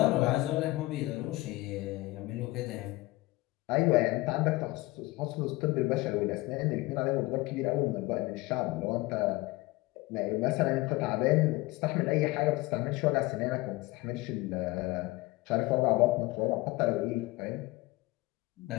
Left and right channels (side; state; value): right; quieter; 20.7 dB